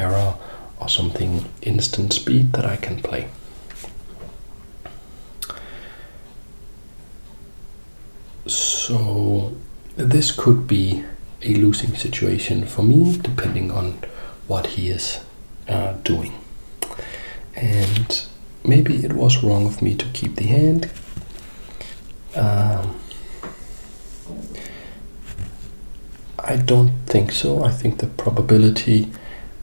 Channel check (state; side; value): inverted; both; correlation -1.00